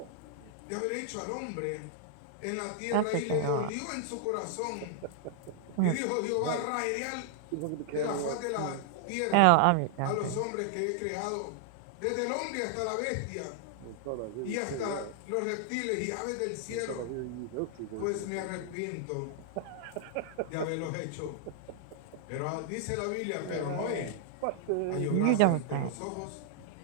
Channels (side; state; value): both; different; correlation -0.01